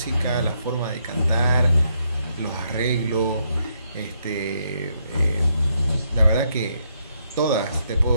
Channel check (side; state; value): both; inverted; correlation -0.76